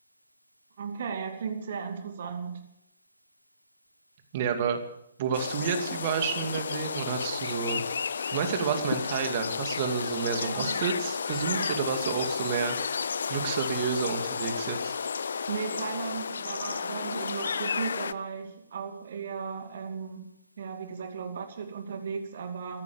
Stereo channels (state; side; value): inverted; both; correlation -0.62